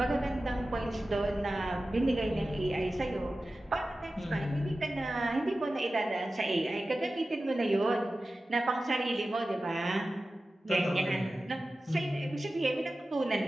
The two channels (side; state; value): both; normal; correlation 0.95